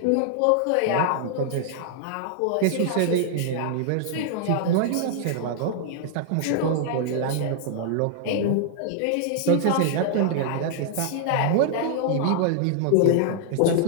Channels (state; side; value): different; both; correlation -0.01